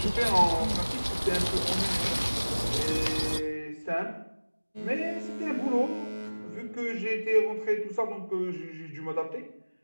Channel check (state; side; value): inverted; both; correlation -1.00